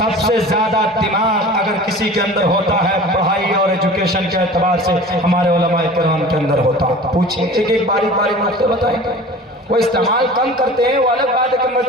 ज्यादा दिमाग अगर किसी के अंदर होता है पढ़ाई और एजुकेशन के एतबार से, हमारे उलमाए किराम के अंदर होता। पूछिए, एक बारीक बारीक नुक्ते बताएंगे। वो इस्तेमाल कम करते हैं, वो अलग बात है कि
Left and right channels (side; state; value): both; normal; correlation 0.40